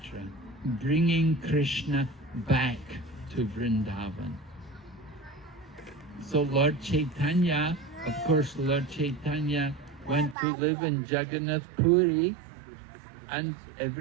bringing Krishna back to Vrindavan. So Lord Chaitanya Of course, Lord Chaitanya went to live in Jagannath Puri, and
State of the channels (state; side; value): drops out; left; at 10.4 s